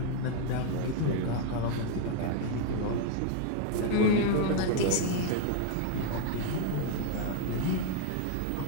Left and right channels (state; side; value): different; both; correlation 0.00